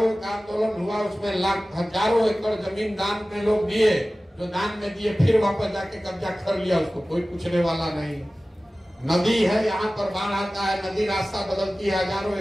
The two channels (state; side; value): normal; both; correlation 0.97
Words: का आंदोलन हुआ, उसमें हजारों एकड़ जमीन दान में लोग दिए, जो दान में दिए फिर वापस जाके कब्जा कर लिया, उसको कोई पूछने वाला नहीं। नदी है, यहाँ पर बाढ़ आता है, नदी रास्ता बदलती है, हजारों